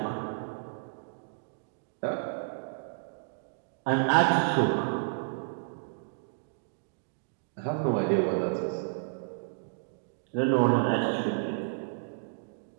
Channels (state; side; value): silent; left; digital silence